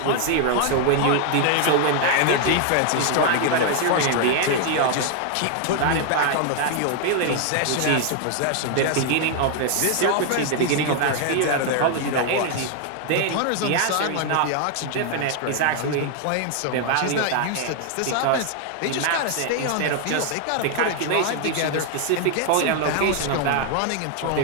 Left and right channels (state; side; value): different; both; correlation 0.00